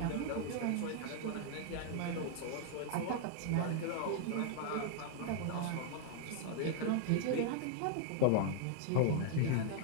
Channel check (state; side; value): different; both; correlation -0.01